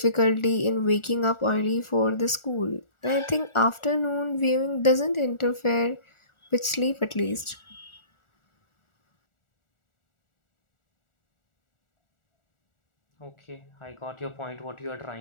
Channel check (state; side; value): late; right; 1.4 ms